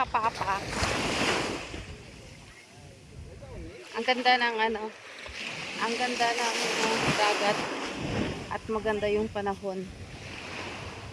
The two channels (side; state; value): both; identical; correlation 1.00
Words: Ang ganda ng ang ganda ng dagat at maganda yung panahon.